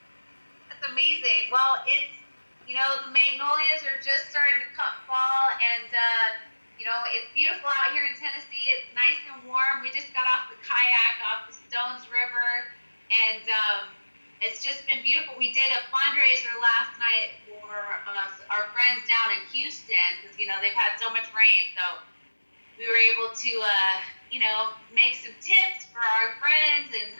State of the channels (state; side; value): inverted; both; correlation -1.00